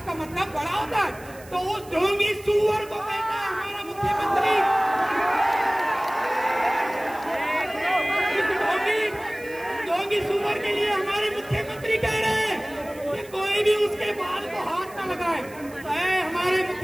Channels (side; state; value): right; noise; hiss, 22 dB below the sound